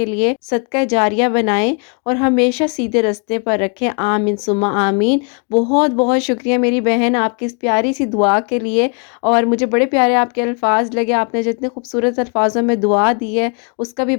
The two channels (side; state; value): right; quieter; 38.0 dB